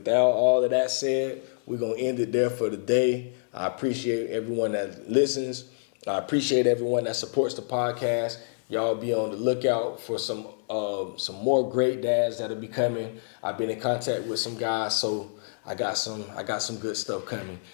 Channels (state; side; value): silent; right; 60 dB below the other